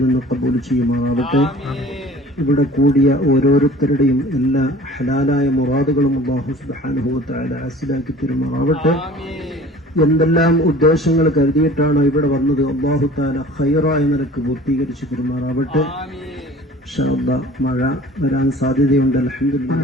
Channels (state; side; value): normal; both; correlation 0.46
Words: നിന്ന് ഖബൂൽ ചെയ്യുമാറാവട്ടെ. ഇവിടെ കൂടിയ ഓരോരുത്തരുടെയും എല്ലാ ഹലാലായ മുറാദുകളും അല്ലാഹു സുബ്ഹാനഹു വ തആല ഹാസിലാക്കി തരുമാറാവട്ടെ. എന്തെല്ലാം ഉദ്ദേശങ്ങൾ കരുതിയിട്ടാണ് ഇവിടെ വന്നത് അല്ലാഹു തആല ഖൈറായ നിലക്ക് പൂർത്തീകരിച്ചു തരുമാറാവട്ടെ. ഇൻഷാ അല്ലാഹ് മഴ വരാൻ സാധ്യതയുണ്ട്.